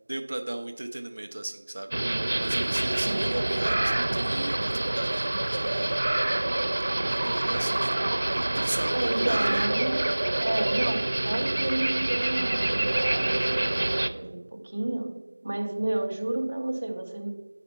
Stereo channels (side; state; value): both; inverted; correlation -1.00